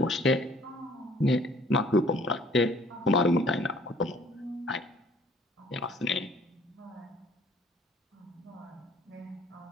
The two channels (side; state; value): both; normal; correlation 0.57